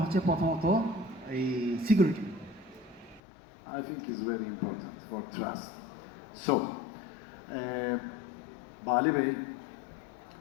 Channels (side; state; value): right; drops out; at 3.2 s